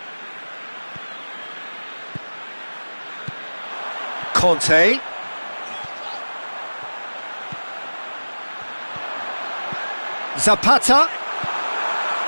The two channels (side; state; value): both; inverted; correlation -1.00